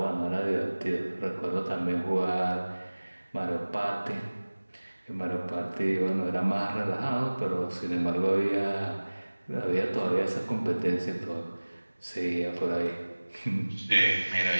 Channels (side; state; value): both; inverted; correlation -1.00